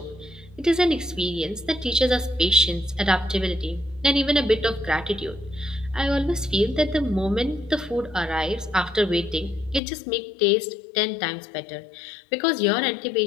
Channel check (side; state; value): right; drops out; at 9.8 s